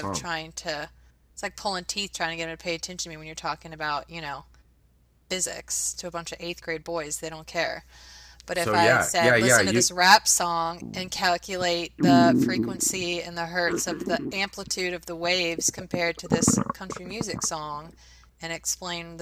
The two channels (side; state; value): both; identical; correlation 1.00